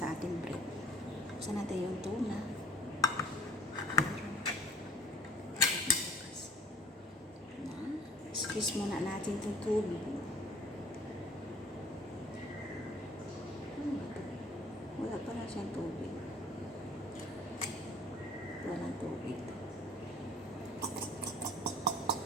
ating bread. Saan natin yung tuna? Squeeze muna natin itong tubig. Wala pa na siyang tubig. Walang tubig.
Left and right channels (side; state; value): both; normal; correlation 0.50